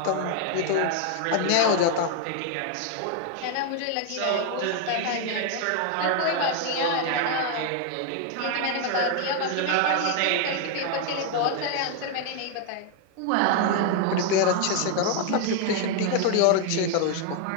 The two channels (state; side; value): different; both; correlation 0.00